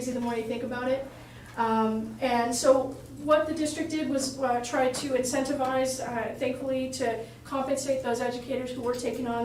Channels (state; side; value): identical; both; correlation 1.00